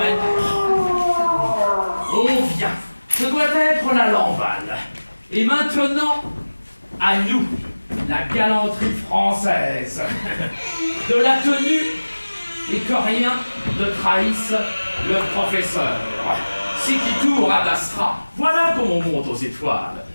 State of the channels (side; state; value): both; inverted; correlation -1.00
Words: On vient. Ce doit être la Lamballe. Et maintenant, à nous, la galanterie française. De la tenue et que rien ne trahisse le professeur. C'est qui tourne à l'astra. Voilà comment on monte aux étoiles,